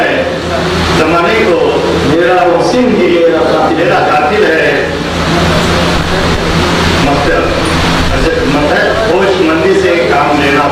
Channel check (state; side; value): identical; both; correlation 1.00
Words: जमाने को मेरा मस्जिद ही मेरा कातिल है। होशमंदी से काम लेना